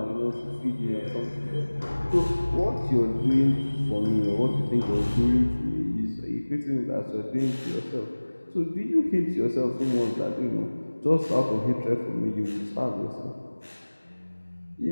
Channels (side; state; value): both; inverted; correlation -1.00